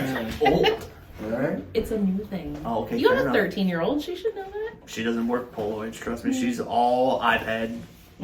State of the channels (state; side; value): identical; both; correlation 1.00